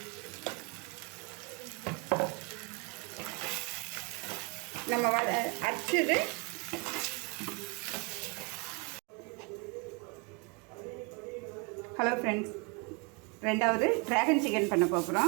நம்ம அரைச்சது ஹலோ ஃப்ரெண்ட்ஸ், ரெண்டாவது ட்ராகன் சிக்கன் பண்ண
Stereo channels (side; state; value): left; quieter; 32.0 dB